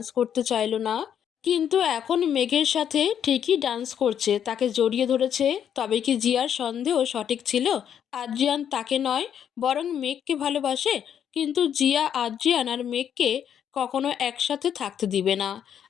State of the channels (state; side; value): quieter; right; 9.0 dB